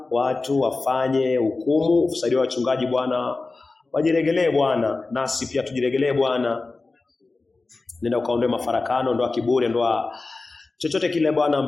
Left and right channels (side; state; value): right; quieter; 3.6 dB